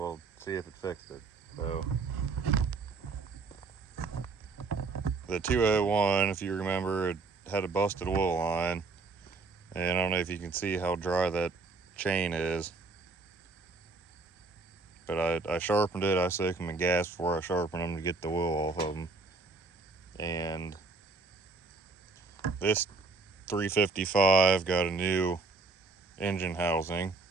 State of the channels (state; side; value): quieter; left; 4.0 dB